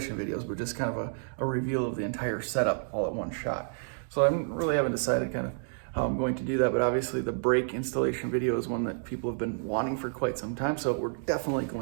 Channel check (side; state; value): left; silent; digital silence